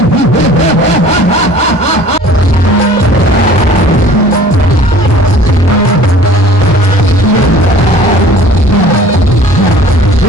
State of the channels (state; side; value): normal; both; correlation 0.48